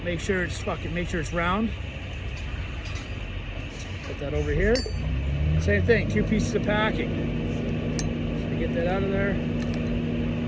Make sure it's round. Put that over here. Same thing. 2 pieces of packing. So get that out of there.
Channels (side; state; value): both; identical; correlation 1.00